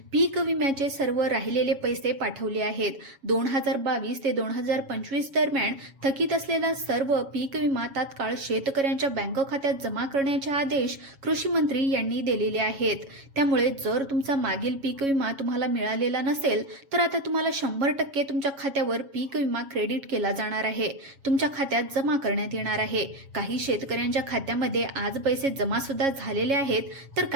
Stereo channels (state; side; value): late; left; 7.3 ms